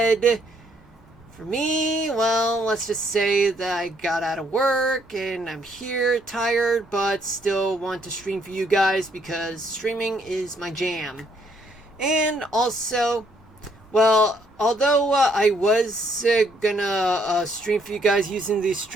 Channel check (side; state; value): both; normal; correlation 0.69